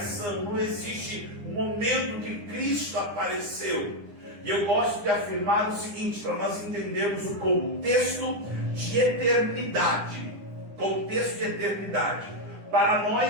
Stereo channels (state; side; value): late; left; 9.8 ms